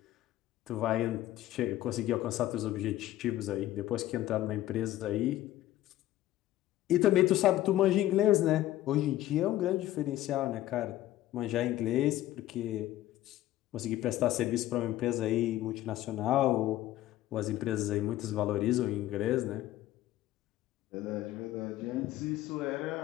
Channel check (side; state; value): right; quieter; 14.4 dB